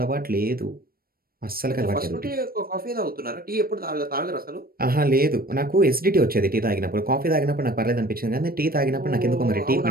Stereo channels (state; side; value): late; left; 0.43 ms